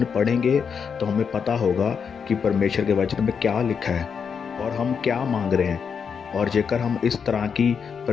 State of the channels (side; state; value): right; quieter; 6.5 dB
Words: पढ़ेंगे तो हमें पता होगा कि परमेश्वर के वचन में क्या लिखा है और हम क्या मांग रहे हैं। और जेकर हम इस तरह की